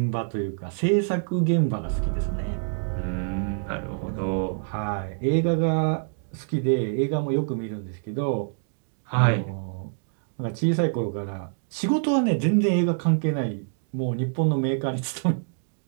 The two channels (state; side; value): silent; left; digital silence